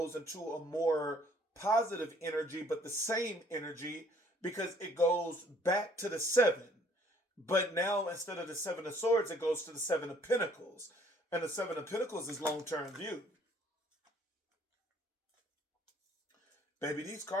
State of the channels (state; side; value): normal; both; correlation 0.60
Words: into a more positive energy, but the same energy, because it goes back to the Seven. But now instead of the Seven of Swords, it goes to the Seven of Pentacles. And the Seven of Pentacles is long-term view. Baby, these